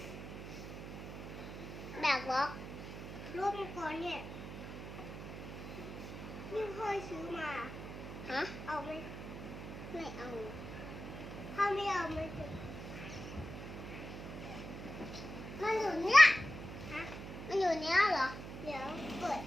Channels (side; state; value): right; noise; hum, 9 dB below the sound